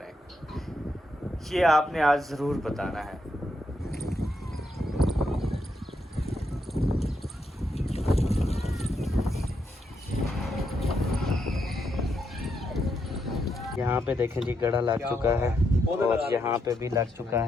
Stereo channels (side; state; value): both; normal; correlation 0.80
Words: ये आपने आज ज़रूर बताना है। यहाँ पे देखें जी, गड़ा लग चुका है और यहाँ पे भी लग चुका